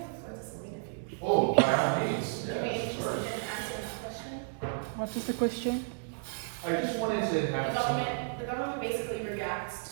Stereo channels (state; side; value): silent; left; 56 dB below the other